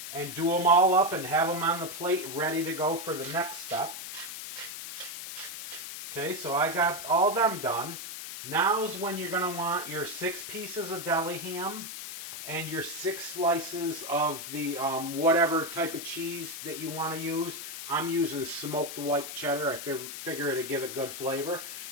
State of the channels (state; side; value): noise; left; hiss, 8 dB below the sound